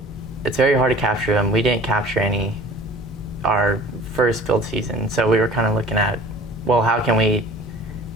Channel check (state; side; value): normal; both; correlation 0.46